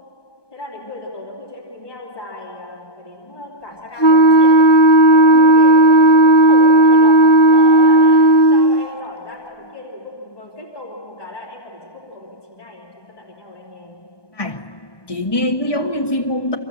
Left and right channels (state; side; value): late; right; 1.2 ms